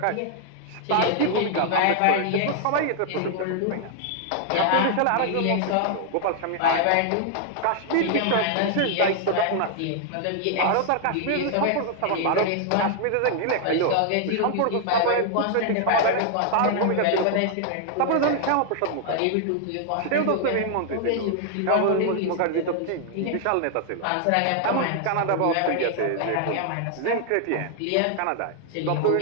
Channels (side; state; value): both; different; correlation 0.00